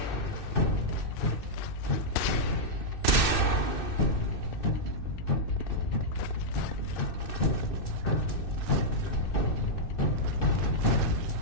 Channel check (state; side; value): late; right; 2.6 ms